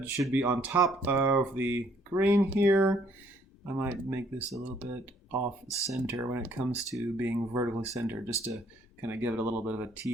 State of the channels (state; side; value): normal; both; correlation 0.64